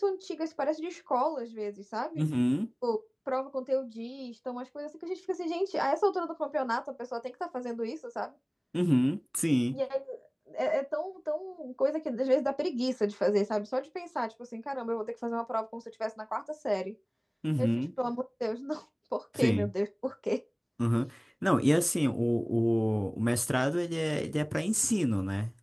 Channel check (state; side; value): identical; both; correlation 1.00